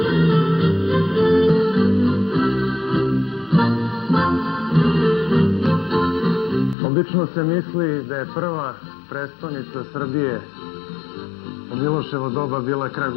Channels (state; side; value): drops out; right; at 6.8 s